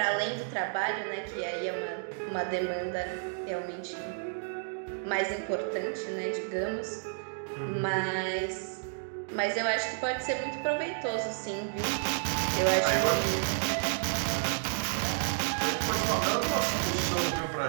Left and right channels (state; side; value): silent; left; digital silence